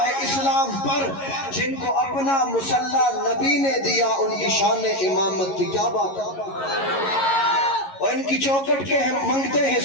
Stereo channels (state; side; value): late; right; 11 ms